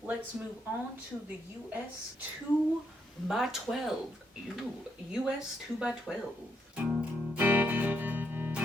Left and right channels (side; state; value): both; normal; correlation 0.77